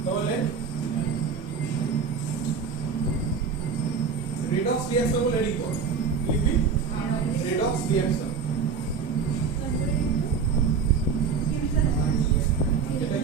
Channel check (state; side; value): quieter; left; 5.8 dB